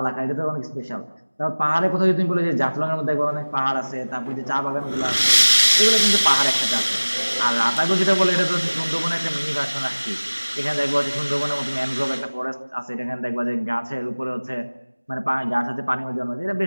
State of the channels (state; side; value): inverted; both; correlation -1.00